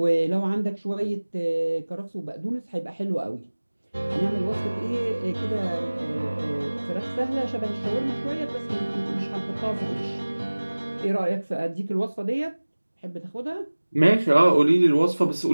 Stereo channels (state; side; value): inverted; both; correlation -1.00